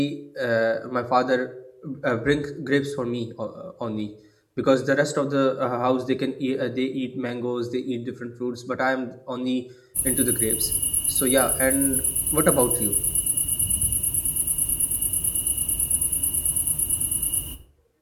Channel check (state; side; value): identical; both; correlation 1.00